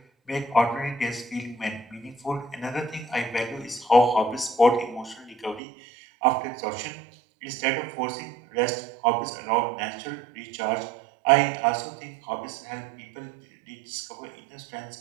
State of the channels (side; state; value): left; drops out; at 5.6 s